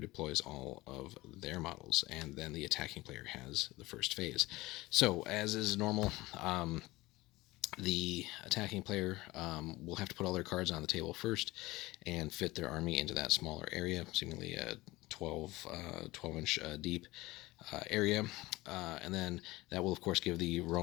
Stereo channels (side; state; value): right; quieter; 19.7 dB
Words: all of their models, and then the attacking player has the first phase. So as is normal, the attacking player will have to put all their cards on the table first and fit their army into that smaller area, seemingly a 12-inch deep area, and then that will of course give the